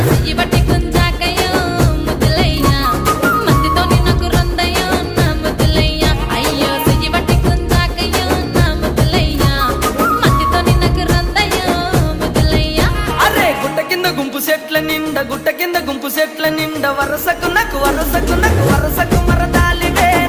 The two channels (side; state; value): both; identical; correlation 1.00